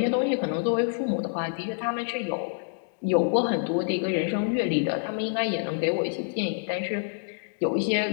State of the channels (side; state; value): right; silent; digital silence